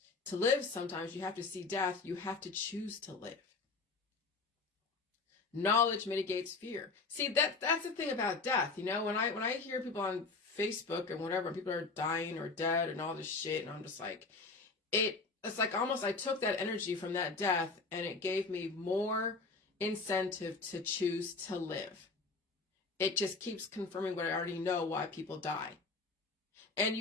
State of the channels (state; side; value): quieter; right; 4.0 dB